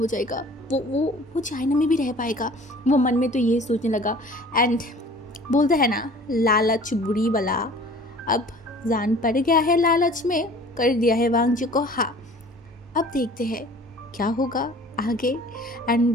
जाएगा, वो चाइना में भी रह पाएगा। वो मन में तो ये सोचने लगा एंड बोलते हैं ना लालच बुरी बला, अब जान पड़ गया है लालच में, कर दिया है वांग जी को। हाँ, अब देखते हैं क्या होगा आगे।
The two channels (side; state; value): both; normal; correlation 0.47